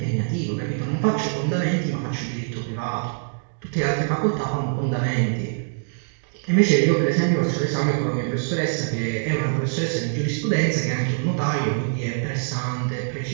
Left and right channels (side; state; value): left; silent; digital silence